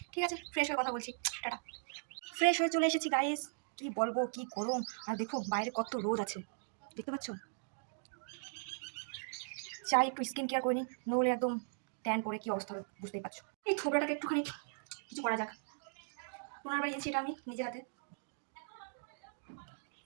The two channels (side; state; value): left; silent; digital silence